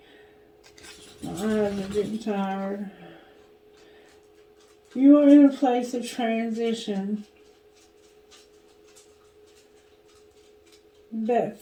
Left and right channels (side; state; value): both; identical; correlation 1.00